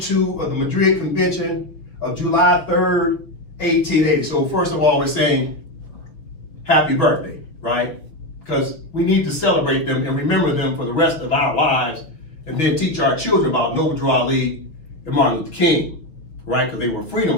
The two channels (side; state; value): right; late; 6.5 ms